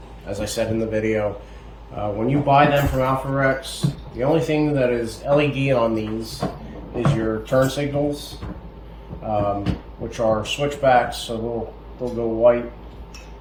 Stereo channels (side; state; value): both; identical; correlation 1.00